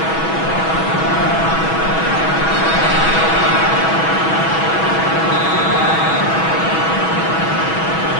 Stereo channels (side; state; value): right; late; 6.2 ms